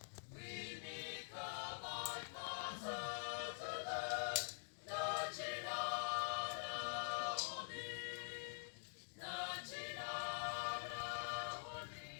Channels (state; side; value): silent; right; digital silence